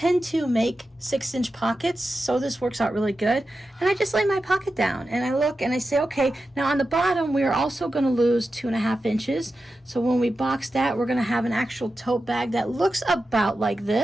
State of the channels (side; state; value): both; normal; correlation 0.91